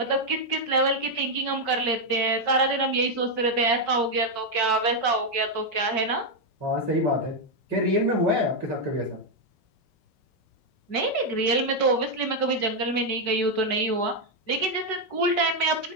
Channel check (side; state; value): right; late; 5.3 ms